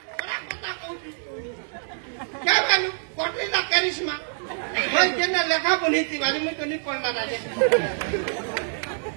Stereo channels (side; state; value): left; silent; digital silence